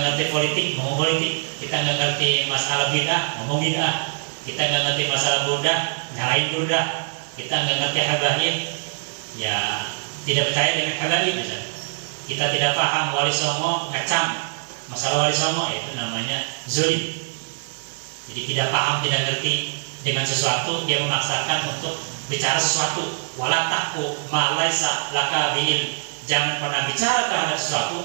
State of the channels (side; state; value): left; silent; digital silence